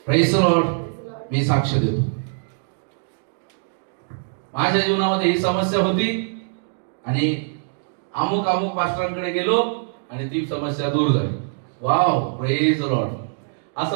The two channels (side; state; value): left; silent; digital silence